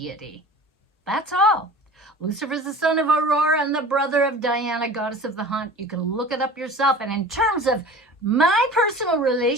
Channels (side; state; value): both; normal; correlation 0.40